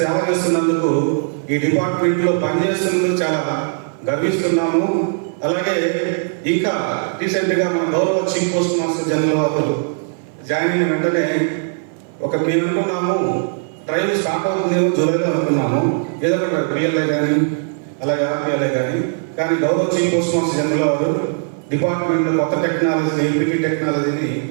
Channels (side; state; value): left; silent; 59 dB below the other